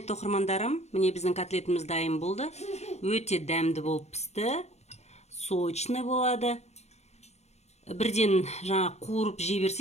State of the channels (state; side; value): late; right; 0.32 ms